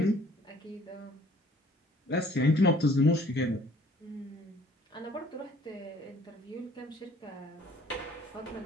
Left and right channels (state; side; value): normal; both; correlation 0.56